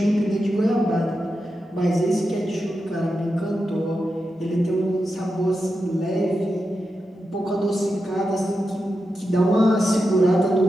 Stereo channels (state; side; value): normal; both; correlation 0.89